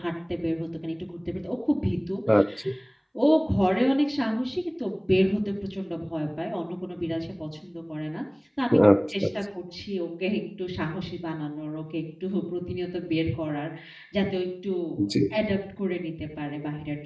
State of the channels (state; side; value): identical; both; correlation 1.00